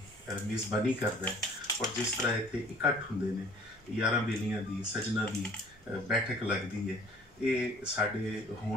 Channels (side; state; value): both; normal; correlation 0.52